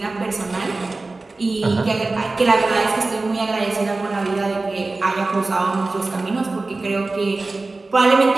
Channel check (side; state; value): left; quieter; 3.4 dB